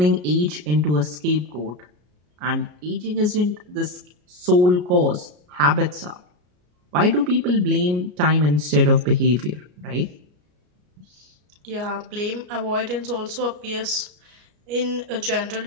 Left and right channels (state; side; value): late; left; 33 ms